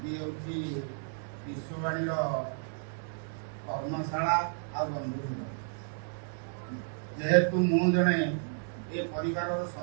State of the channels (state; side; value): silent; left; digital silence